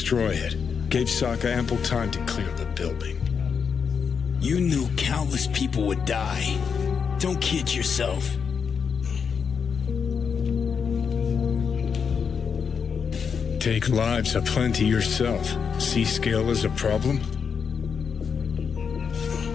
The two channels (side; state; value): right; quieter; 6.4 dB